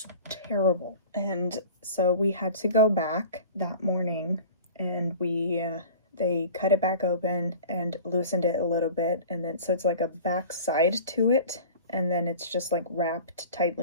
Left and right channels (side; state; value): both; inverted; correlation -0.40